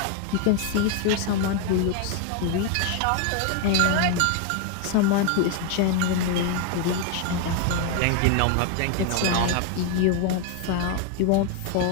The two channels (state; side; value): different; both; correlation 0.01